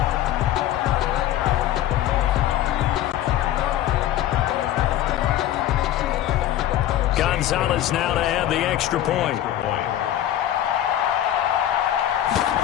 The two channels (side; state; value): right; quieter; 12.3 dB